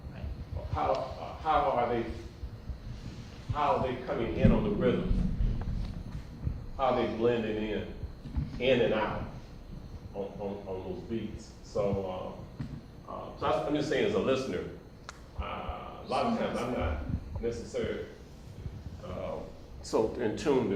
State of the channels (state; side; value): identical; both; correlation 1.00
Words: Right. How are they coming in on the rhythm? How are they blending in and out on those beats? So, I'm just saying as a listener, a lot of times I'm not necessarily so in tune